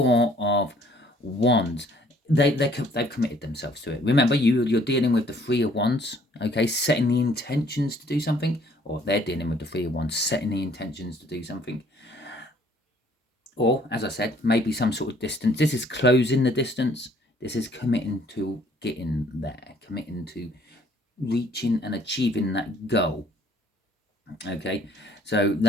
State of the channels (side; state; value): both; normal; correlation 0.60